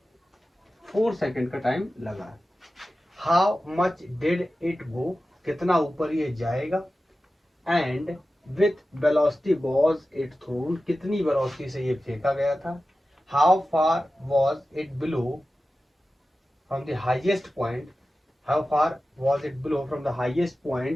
4 सेकेंड का टाइम लगा है। How much did it go, कितना ऊपर ये जाएगा, and with velocity was it thrown, कितनी वेलोसिटी से ये फेंका गया था, how far was it below from the highest point, how far was it below from the highest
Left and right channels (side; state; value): both; normal; correlation 0.94